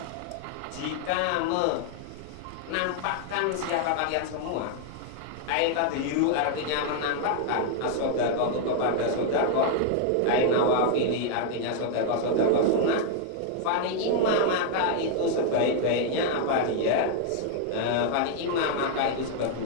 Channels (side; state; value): both; different; correlation 0.00